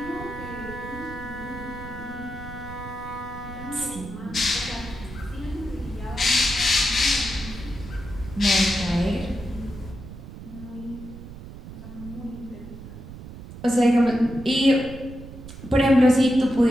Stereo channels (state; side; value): noise; right; rumble, 13 dB below the sound